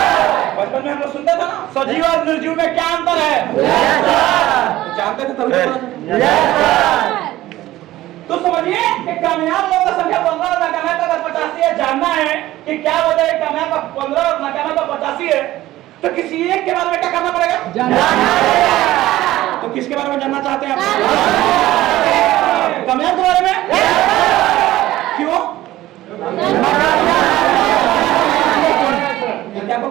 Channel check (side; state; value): left; quieter; 15.7 dB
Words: बचपन में हम लोग सुनते थे ना, सजीव और निर्जीव में क्या अंतर है, जानते थे तभी तो समझिए कि कामयाब लोगों का संख्या 15 और नाकामयाब का 85 है। जानना है कि क्या वजह है कामयाब का 15 और नाकामयाब का 85 है, तो किसी एक के बारे में क्या करना पड़ेगा, तो किसके बारे में जानना चाहते हैं आप? कामयाब के बारे में। क्यों? आपको